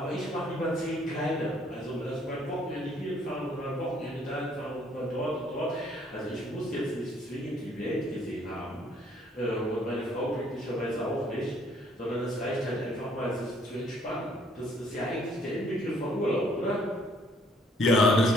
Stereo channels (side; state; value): both; normal; correlation 0.63